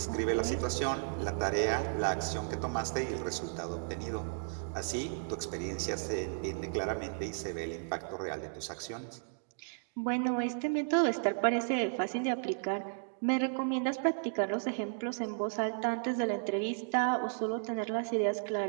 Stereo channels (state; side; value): silent; left; digital silence